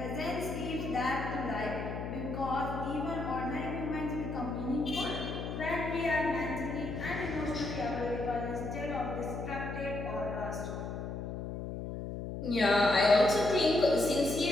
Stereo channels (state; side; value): noise; left; hum, 6 dB below the sound